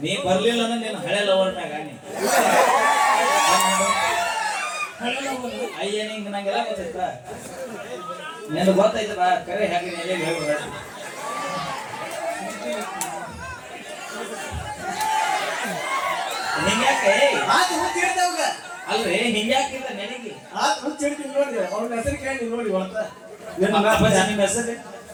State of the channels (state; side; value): identical; both; correlation 1.00